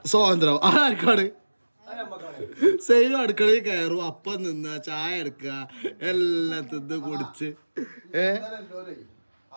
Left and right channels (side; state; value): both; inverted; correlation -1.00